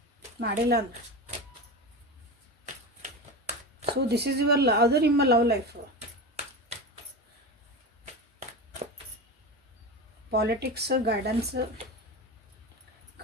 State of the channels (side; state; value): both; normal; correlation 0.24